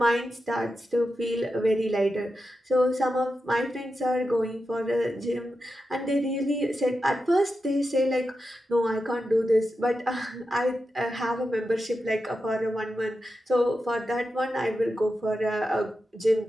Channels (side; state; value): both; normal; correlation 0.90